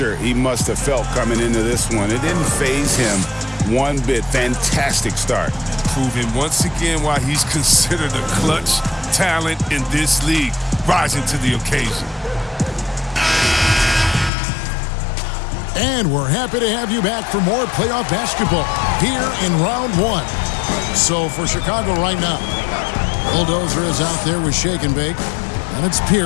he must have felt coming into this one, it didn't faze him one bit. Fantastic start. Proving once again why he's considered a clutch talent in this league, rising to the occasion. And we're happy to have you back for more playoff basketball here in round 1. So for Chicago right now, Bulldozer is out there with Shake and Bake. And it's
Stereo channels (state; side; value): drops out; right; at 14.3 s